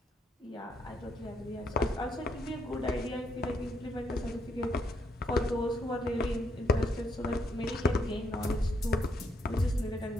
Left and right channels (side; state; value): both; normal; correlation 0.75